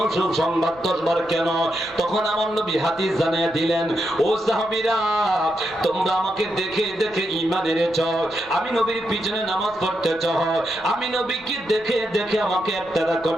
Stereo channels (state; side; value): noise; left; rumble, 24 dB below the sound